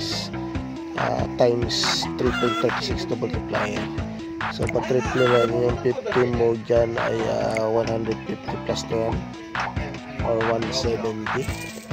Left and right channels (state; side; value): identical; both; correlation 1.00